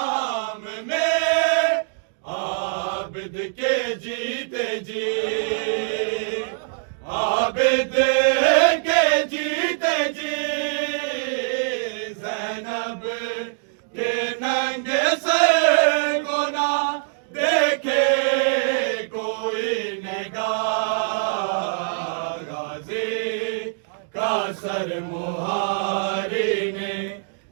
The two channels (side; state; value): left; silent; digital silence